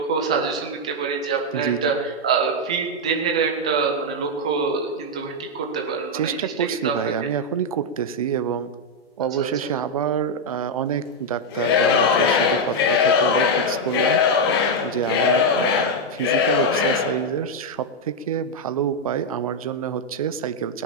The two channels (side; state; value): both; normal; correlation 0.01